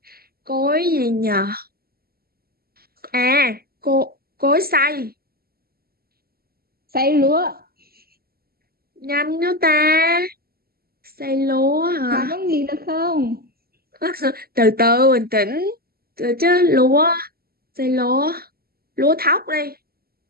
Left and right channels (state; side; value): late; left; 0.45 ms